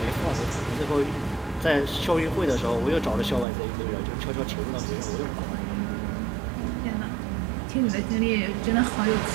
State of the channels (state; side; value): drops out; left; at 3.5 s